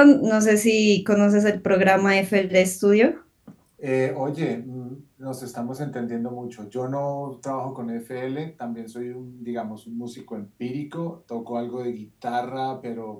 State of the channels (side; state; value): both; identical; correlation 1.00